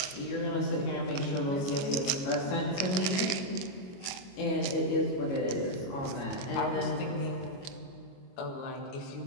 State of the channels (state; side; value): late; right; 21 ms